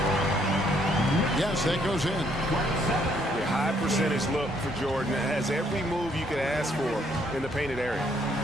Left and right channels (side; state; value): both; normal; correlation 0.69